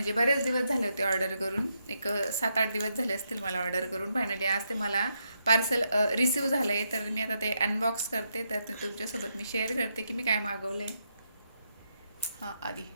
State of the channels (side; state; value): both; inverted; correlation -0.81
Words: बरेच दिवस झाले होते ऑर्डर करून, एक 7-8 दिवस झाले असतील मला ऑर्डर करून. फायनली आज ते मला पार्सल रिसीव झालं आहे. तर मी आता ते अनबॉक्स करते, तर ते तुमच्यासोबत मी शेअर करते की मी काय मागवलं आहे. हां आधी